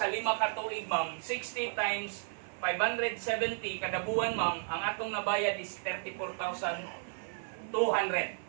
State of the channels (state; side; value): silent; left; 55 dB below the other